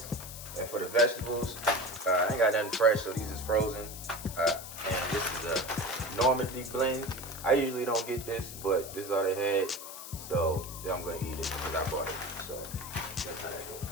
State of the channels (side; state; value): left; noise; hiss, 11 dB below the sound